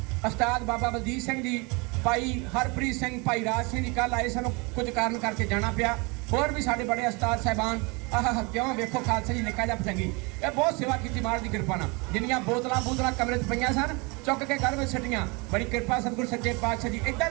ਉਸਤਾਦ ਬਾਬਾ ਬਲਜੀਤ ਸਿੰਘ ਜੀ, ਭਾਈ ਹਰਪ੍ਰੀਤ ਸਿੰਘ, ਭਾਈ ਰਾਜ ਸਿੰਘ ਜੀ ਕੱਲ ਆਏ, ਸਾਨੂੰ ਕੁਝ ਕਾਰਨ ਕਰਕੇ ਜਾਣਾ ਪਿਆ। ਹੋਰ ਵੀ ਸਾਡੇ ਬੜੇ ਉਸਤਾਦ ਸਾਹਿਬਾਨ ਆਹ ਕਿਉਂ ਵੇਖੋ ਖਾਲਸਾ ਜੀ ਨਿੱਕਾ ਜਿਹਾ ਪਤੰਗੀ, ਇਹ ਬਹੁਤ ਸੇਵਾ ਕੀਤੀ ਮਹਾਰਾਜ ਦੀ ਕਿਰਪਾ ਨਾਲ। ਜਿੰਨੀਆਂ ਬੋਤਲਾਂ ਕਮਰੇ 'ਚ ਪਈਆਂ ਸਨ ਚੁੱਕ ਕੇ ਘਰ ਵਿੱਚ ਛੱਡੀਆਂ। ਬੜੀ ਕਿਰਪਾ ਸਤਿਗੁਰ ਸੱਚੇ ਪਾਤਸ਼ਾਹ ਜੀ। ਇੱਦਾਂ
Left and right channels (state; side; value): quieter; left; 28.5 dB